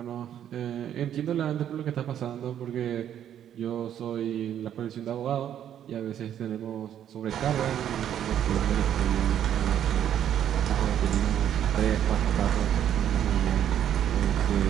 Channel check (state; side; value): quieter; left; 10.1 dB